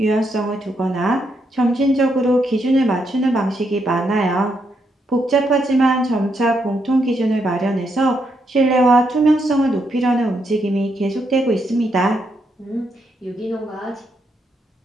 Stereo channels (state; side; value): normal; both; correlation 0.78